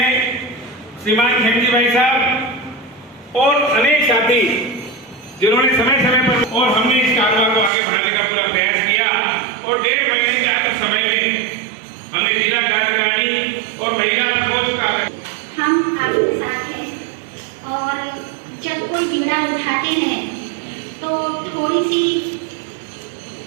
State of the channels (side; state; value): left; drops out; at 7.7 s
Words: श्रीमान खेमजी भाई साहब और अनेक साथी जिन्होंने समय समय पर, और हमने इस कारवां को आगे बढ़ाने का पूरा प्रयास किया। और 1.5 महीने के आधे समय में हमने जिला कार्यकारिणी और महिला प्रकोष्ठ का हम आपके साथ हैं और जब कोई बिगड़ा उठाते हैं तो थोड़ी सी